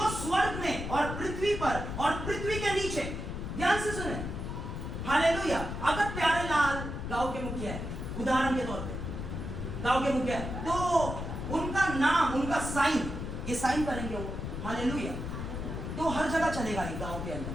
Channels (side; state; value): left; noise; rumble, 5 dB below the sound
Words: स्वर्ग में और पृथ्वी पर और पृथ्वी के नीचे, ध्यान से सुने। हालेलुया। अगर प्यारे लाल गांव के मुखिया है, उदाहरण के तौर पे गांव के मुखिया है, तो उनका नाम, उनका साइन, ये साइन करेंगे वो, हालेलुया, तो हर जगह चलेगा ये गांव के अंदर।